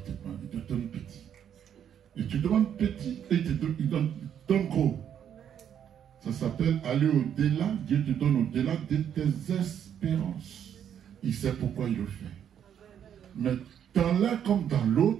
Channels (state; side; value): quieter; left; 9.1 dB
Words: il te donne petit. Et tu demandes petit et il donne gros. Ça s'appelle aller au-delà. Dieu te donne au-delà de tes espérances. Il sait pourquoi il le fait. Mais dans l'un comme dans